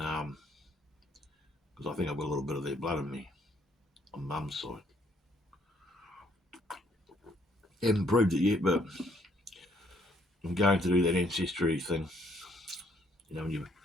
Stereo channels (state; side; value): normal; both; correlation 0.67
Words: I think I've got a little bit of their blood in me on mum's side. Haven't proved it yet, but I'm going to do that ancestry thing. When you